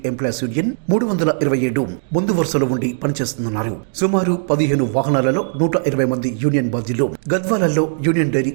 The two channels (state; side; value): silent; left; digital silence